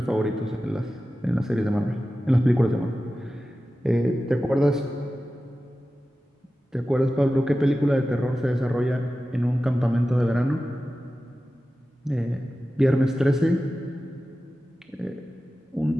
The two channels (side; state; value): both; normal; correlation 0.94